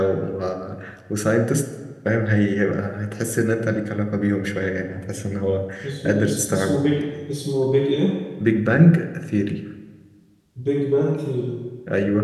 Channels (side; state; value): both; identical; correlation 1.00